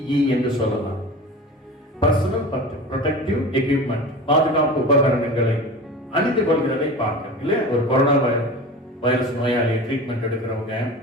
என்று சொல்லலாம். பர்சனல் ப்ரொடெக்டிவ் எக்யூப்மெண்ட், பாதுகாப்பு உபகரணங்களை அணிந்து கொள்கிறதை பார்க்க இல்லையா? ஒரு கொரோனா வைரஸ் நோயாளியை ட்ரீட்மெண்ட் எடுக்கிறவங்க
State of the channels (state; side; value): normal; both; correlation 0.34